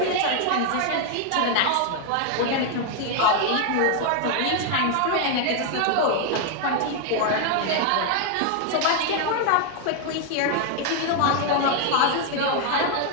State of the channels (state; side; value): different; both; correlation 0.00